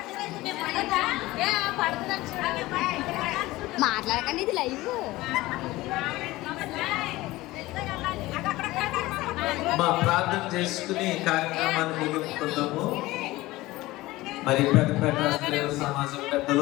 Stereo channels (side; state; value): right; quieter; 18.7 dB